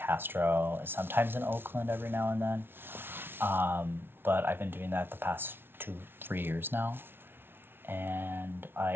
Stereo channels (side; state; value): left; late; 0.11 ms